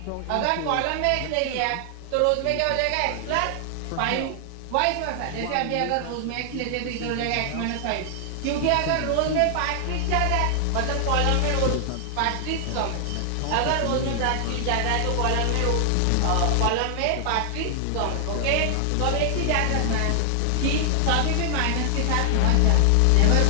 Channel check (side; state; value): both; different; correlation 0.00